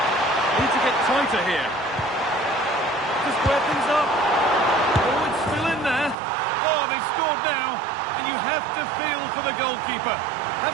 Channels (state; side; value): drops out; left; at 6.2 s